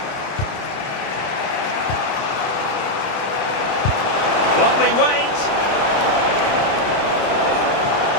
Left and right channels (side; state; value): right; late; 30 ms